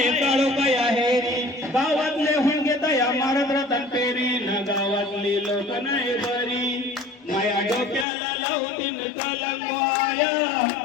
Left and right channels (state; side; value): drops out; right; at 8.1 s